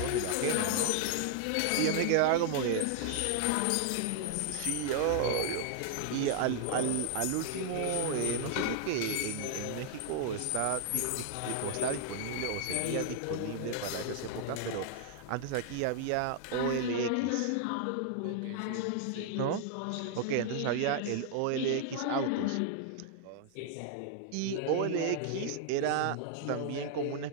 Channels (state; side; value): different; both; correlation 0.00